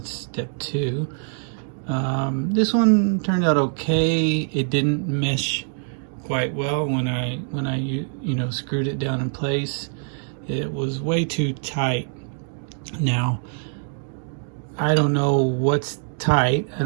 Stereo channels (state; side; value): silent; left; 57 dB below the other